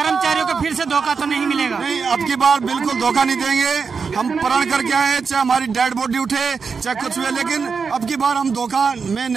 को फिर से धोखा तो नहीं मिलेगा? नहीं, अब की बार बिल्कुल धोखा नहीं देंगे। हम प्रण करके आए, चाहे हमारी डेड बॉडी उठे चाहे कुछ हुए, लेकिन अब की बार हम धोखा में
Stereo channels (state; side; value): quieter; left; 5.4 dB